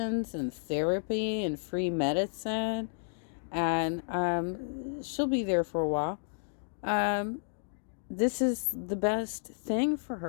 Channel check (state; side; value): silent; right; digital silence